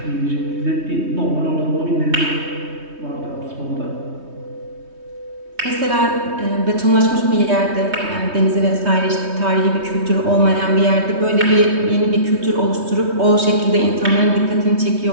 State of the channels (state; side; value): late; left; 3.2 ms